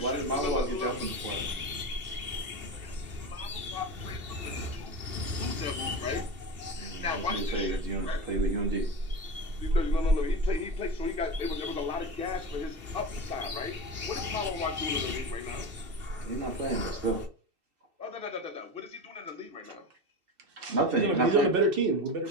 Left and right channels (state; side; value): late; left; 2.7 ms